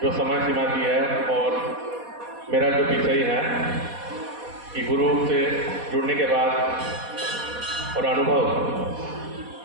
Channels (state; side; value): late; left; 4.1 ms